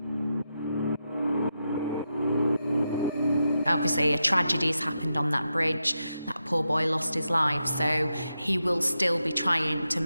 Obviously, a tragedy has happened on that bridge. That poor boy lost his life, so he will still be trying to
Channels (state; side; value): inverted; both; correlation -0.87